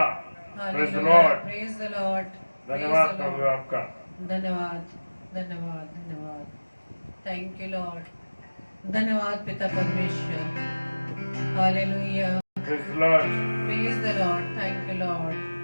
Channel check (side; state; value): both; inverted; correlation -1.00